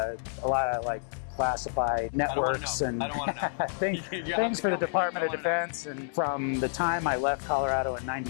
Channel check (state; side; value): silent; right; 58 dB below the other